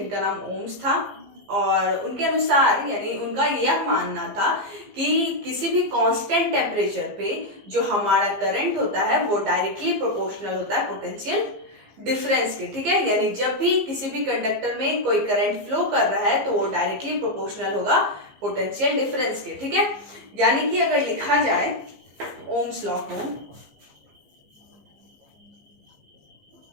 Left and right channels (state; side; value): late; left; 15 ms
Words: नाम ओम्स था। और उनके अनुसार यानी उनका यह मानना था कि किसी भी कांस्टेंट टेम्परेचर पे जो हमारा करंट होता है वो डायरेक्टली प्रोपोर्शनल होता है पोटेंशियल डिफरेंस के। ठीक है, यानी जब भी किसी भी कंडक्टर में कोई करंट फ्लो कर रहा है तो वो डायरेक्टली प्रोपोर्शनल होगा पोटेंशियल डिफरेंस के। ठीक है, यानी कि अगर लिखा जाए ओम्स लॉ को